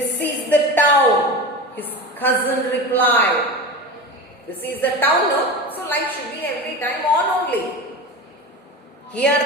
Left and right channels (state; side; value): normal; both; correlation 0.28